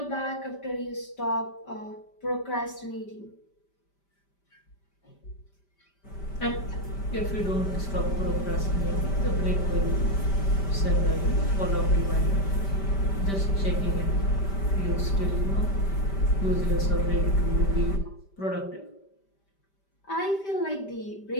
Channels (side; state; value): right; late; 5.1 ms